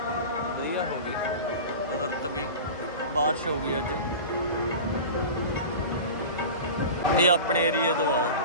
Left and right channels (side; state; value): both; inverted; correlation -0.33